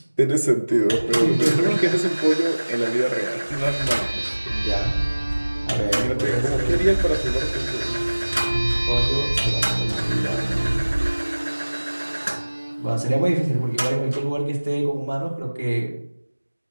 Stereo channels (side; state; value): both; inverted; correlation -1.00